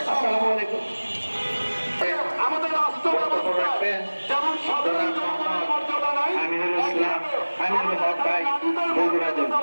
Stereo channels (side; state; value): both; inverted; correlation -1.00